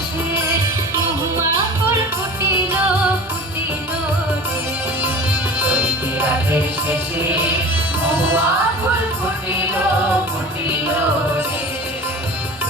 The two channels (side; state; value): both; normal; correlation 0.37